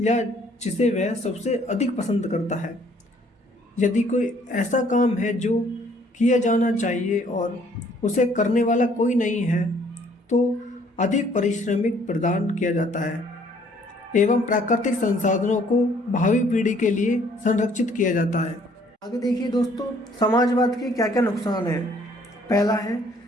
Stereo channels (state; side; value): normal; both; correlation 0.61